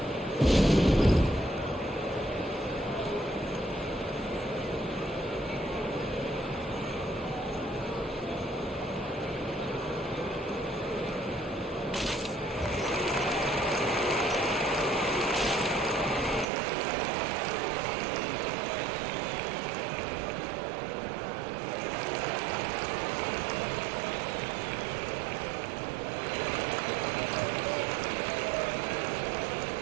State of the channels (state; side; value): drops out; left; at 16.4 s